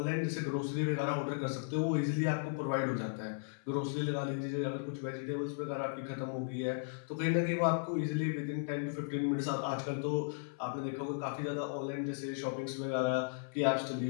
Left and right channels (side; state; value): right; silent; 54 dB below the other